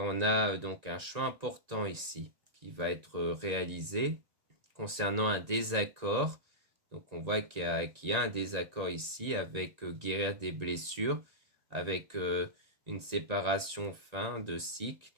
a donc un choix important ici qui va être réalisé concernant un désaccord. Donc on voit qu'il y a un désaccord ici avec guérir des blessures, avec une séparation fin de cycle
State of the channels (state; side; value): late; left; 1.9 ms